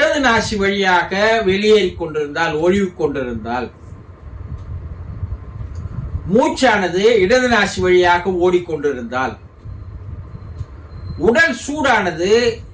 நாசி வழியாக வெளியேறி கொண்டிருந்தால், ஒழிவு கொண்டிருந்தால், மூச்சானது இடது நாசி வழியாக ஓடிக்கொண்டிருந்தால், உடல் சூடானது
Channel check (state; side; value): identical; both; correlation 1.00